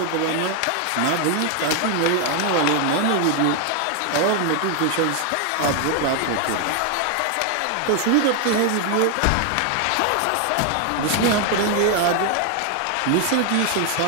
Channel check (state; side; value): different; both; correlation 0.01